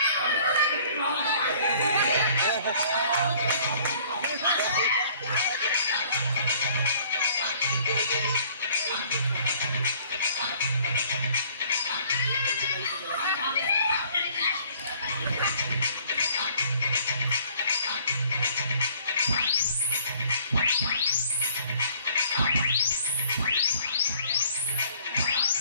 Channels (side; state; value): both; inverted; correlation -0.56